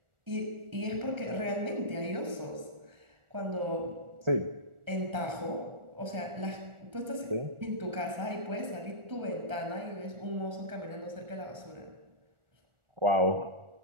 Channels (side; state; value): left; late; 1.4 ms